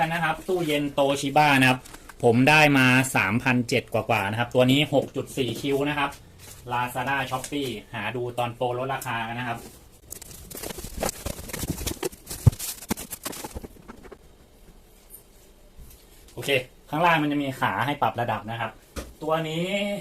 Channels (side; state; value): both; identical; correlation 1.00